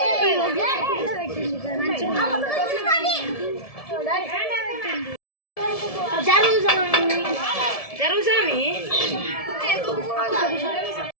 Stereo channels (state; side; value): late; right; 1.7 ms